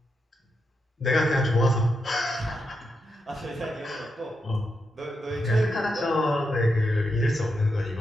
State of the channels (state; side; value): normal; both; correlation 0.85